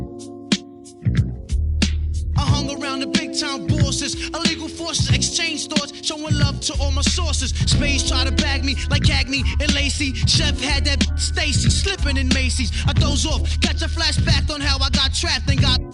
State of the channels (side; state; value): both; identical; correlation 1.00